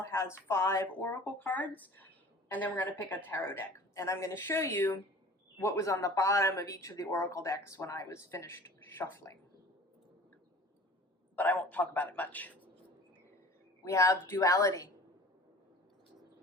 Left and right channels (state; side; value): normal; both; correlation 0.43